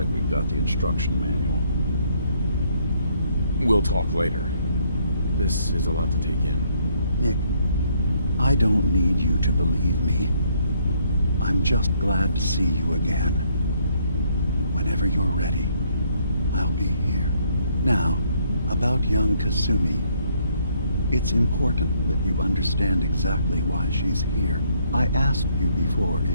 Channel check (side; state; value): both; inverted; correlation -0.69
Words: we've got the instruction manual. We'll talk later. This is a lot to take in. Nick, I don't need you to believe me. I'm just glad to see you again. Whenever you're ready, I'll be here. Now, about young Kasumi. It's important that you understand exactly why she's here. I asked you before